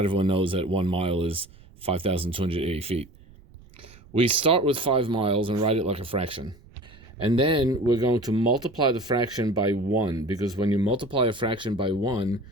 everyone knows that 1 mile is 5,280 feet. We start with 5 miles and write it like a fraction. And then we're going to multiply the fraction by 1, because when you multiply a fraction by 1,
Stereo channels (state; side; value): noise; right; rumble, 24 dB below the sound